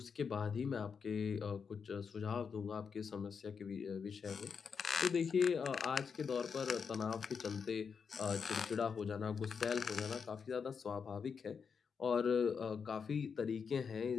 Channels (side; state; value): right; quieter; 6.1 dB